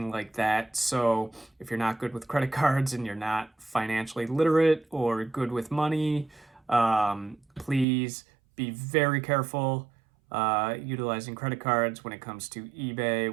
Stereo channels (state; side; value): drops out; left; at 7.9 s